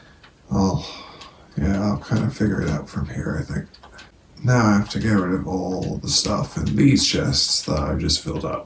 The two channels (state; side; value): identical; both; correlation 1.00